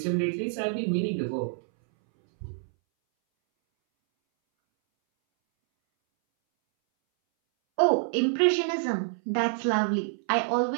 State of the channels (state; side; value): silent; left; 60 dB below the other